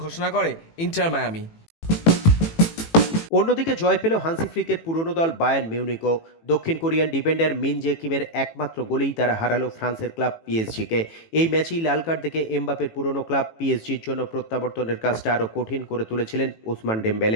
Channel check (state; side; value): late; right; 18 ms